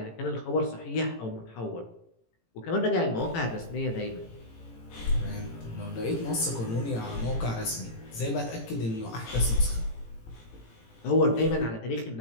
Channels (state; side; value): late; right; 18 ms